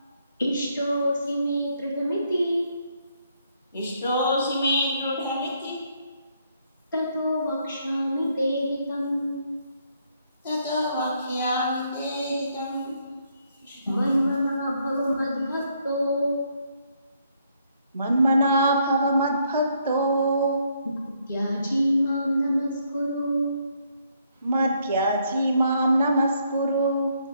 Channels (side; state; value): both; inverted; correlation -0.72